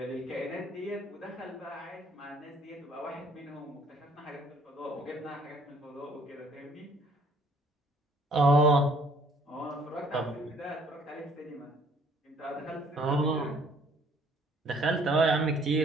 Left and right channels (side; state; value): both; normal; correlation 0.60